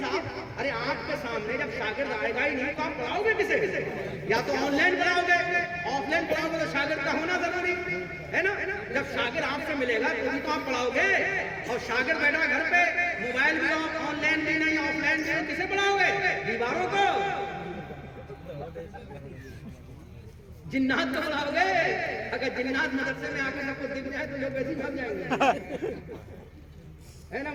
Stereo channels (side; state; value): both; identical; correlation 1.00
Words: ارے آپ کے سامنے جب شاگرد آئے گا ہی نہیں تو آپ پڑھاؤ گے کسے؟ یا تو آن لائن پڑھاؤ گے, آف لائن پڑھاؤ گے تو شاگرد کا ہونا ضروری ہے نا. جب شاگرد آپ سے ملے گا تو آپ پڑھاؤ گے, اور شاگرد بیٹھا گھر پہ موبائل بھی آن لائن بھی نہیں آف لائن بھی کسے پڑھاؤ گے؟ دیواروں کو, جنات کو پڑھاؤ گے. اگر جنات مدرسے میں آ کے سب کو دکھ جائے تو لوگ ویسے بھاگ جائیں گے ہے نا.